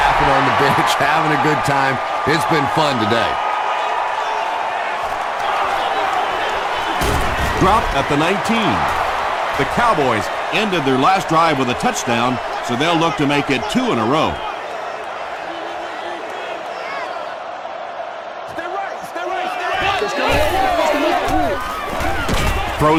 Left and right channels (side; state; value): both; identical; correlation 1.00